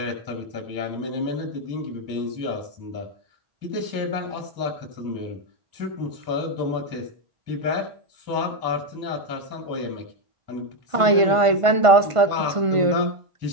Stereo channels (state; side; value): late; left; 1.5 ms